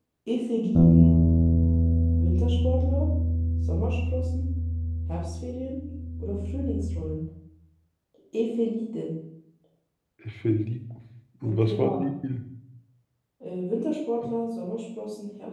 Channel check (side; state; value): both; identical; correlation 1.00